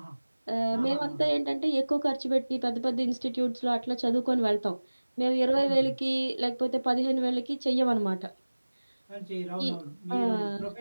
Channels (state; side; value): inverted; both; correlation -1.00